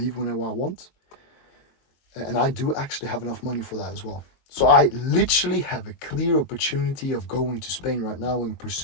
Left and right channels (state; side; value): late; right; 22 ms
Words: whenever I want. And I do actually have enough money for that as well. So I literally have a clear opportunity of going to Spain right now and